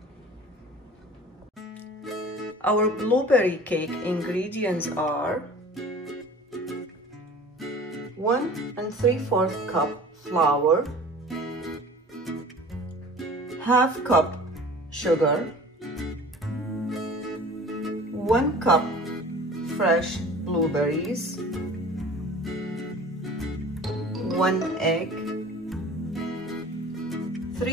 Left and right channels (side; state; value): both; normal; correlation 0.43